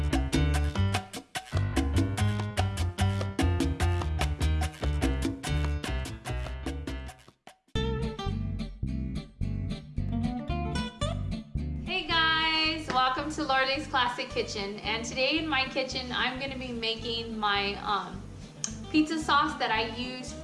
Hey guys, welcome to Loreley's Classic Kitchen. And today in my kitchen, I'm gonna be making my pizza sauce that I use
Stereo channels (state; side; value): identical; both; correlation 1.00